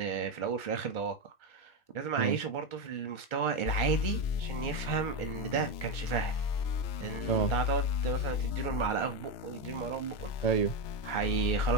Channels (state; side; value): late; right; 3.0 ms